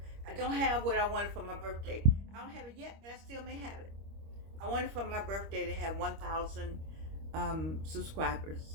I don't have what I wanted for my birthday. I don't have it yet, but I still may have it. I wanted for my birthday to have 1,000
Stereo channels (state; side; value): late; left; 25 ms